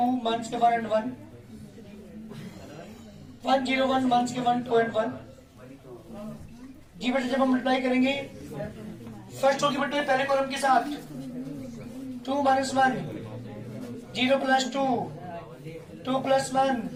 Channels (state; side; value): identical; both; correlation 1.00